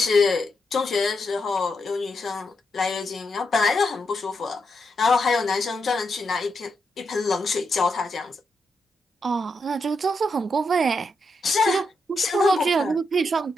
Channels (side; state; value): both; normal; correlation 0.83